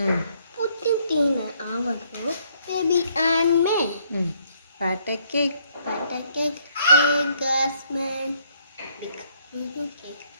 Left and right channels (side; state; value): both; inverted; correlation -0.68